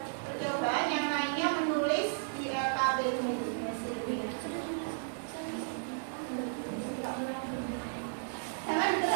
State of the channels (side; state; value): left; silent; digital silence